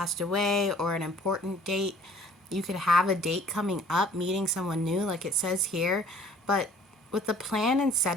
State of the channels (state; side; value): normal; both; correlation 0.54